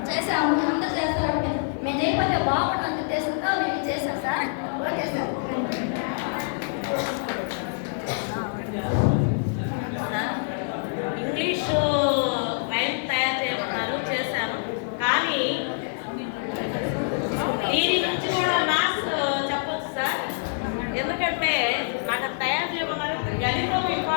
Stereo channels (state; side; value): silent; right; 57 dB below the other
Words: చేసాము. అందరూ చేస్తారంటే మేము చేయకపోతే బాగుంటుంది ఉద్దేశంతో మేము చేసాం sir. Okay sir. English rhyme తయారు చేయమన్నారు, చేశాను. కానీ దీని నుంచి కూడా మ్యాథ్స్ చెప్పొచ్చు సార్. ఎందుకంటే నాకు తయారు చేయమన్నారు, గణితం